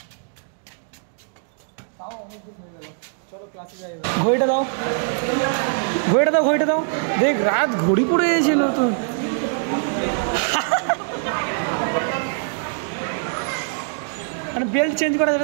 তাও অনেকদিন হয়ে গেল। চলো ক্লাসে যাই। ঘড়িটা দাও, ঘড়িটা দাও। দেখ, রাত ঘড়ি পড়ে গেছে নতুন। মানে বেল্ট চেঞ্জ করা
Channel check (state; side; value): silent; left; digital silence